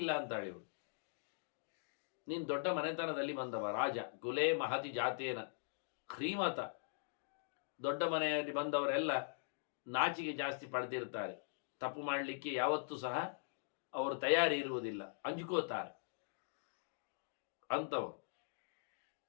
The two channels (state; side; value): silent; right; digital silence